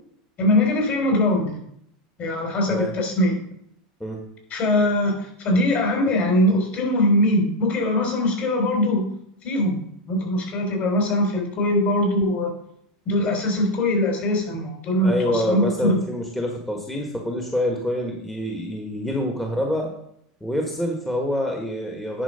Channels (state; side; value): normal; both; correlation 0.13